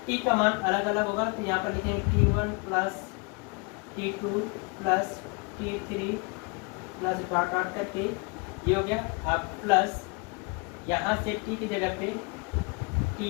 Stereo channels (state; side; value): quieter; right; 30.7 dB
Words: T का मान अलग अलग होगा। तो यहाँ पर लिखेंगे T1 plus T2 plus T3 plus dot dot करके ये हो गया। अब प्लस यहाँ से T की जगह पे